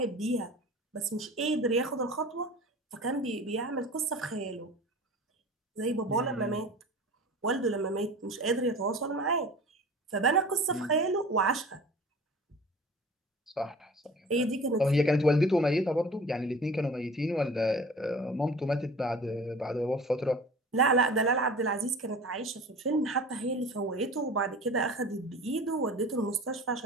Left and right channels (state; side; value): normal; both; correlation 0.40